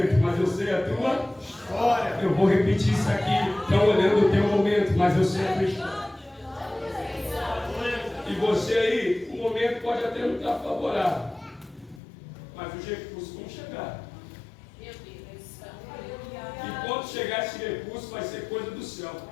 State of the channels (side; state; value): right; drops out; at 12.0 s